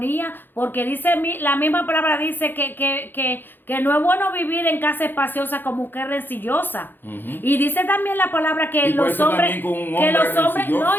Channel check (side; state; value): right; late; 0.096 ms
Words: porque dice la misma palabra dice que no es bueno vivir en casa espaciosa como mujer rencillosa. Y dice también la palabra que Y por los eso hombres, también con un que hombre los hombres, rencilloso.